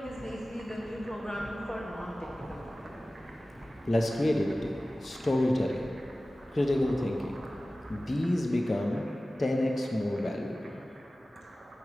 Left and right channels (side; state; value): both; normal; correlation 0.97